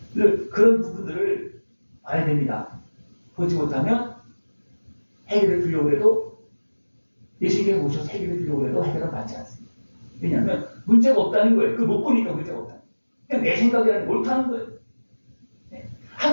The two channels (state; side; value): inverted; both; correlation -1.00